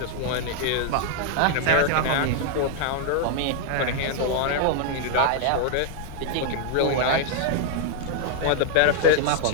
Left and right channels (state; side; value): different; both; correlation -0.01